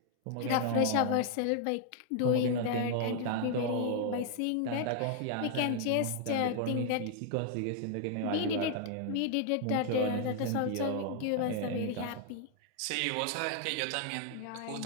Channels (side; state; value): both; different; correlation 0.00